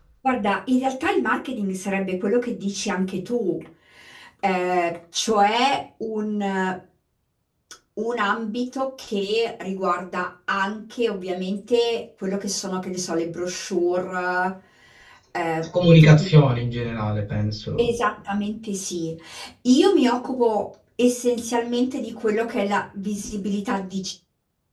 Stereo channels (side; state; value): both; identical; correlation 1.00